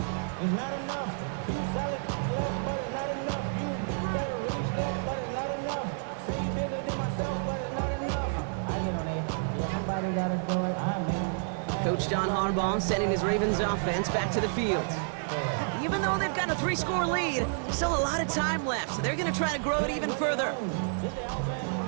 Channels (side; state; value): left; silent; digital silence